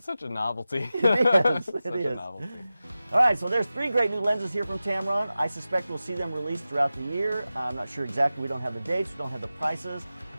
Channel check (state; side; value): inverted; both; correlation -0.95